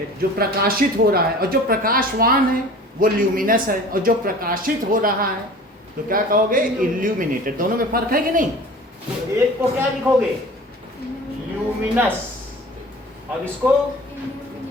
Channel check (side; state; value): both; normal; correlation 0.42